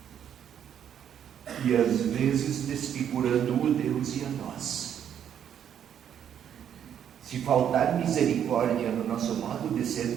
E às vezes desfigurando o Deus e a nós. Se faltar misericórdia no nosso modo de ser,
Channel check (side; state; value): left; quieter; 9.2 dB